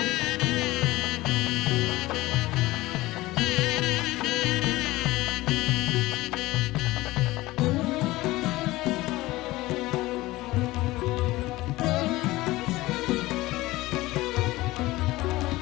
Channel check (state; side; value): quieter; right; 18.8 dB